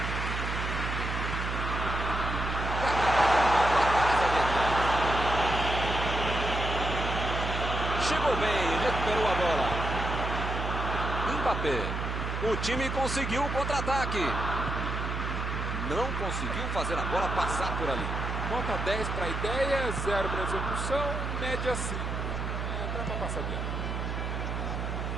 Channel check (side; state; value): right; noise; hum, 3 dB below the sound